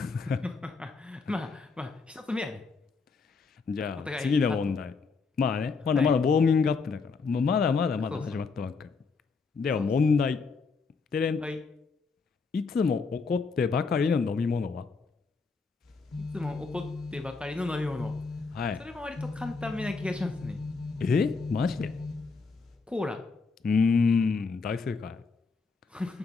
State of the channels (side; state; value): right; quieter; 4.7 dB